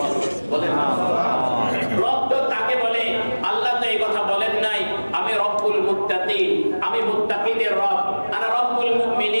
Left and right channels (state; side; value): inverted; both; correlation -1.00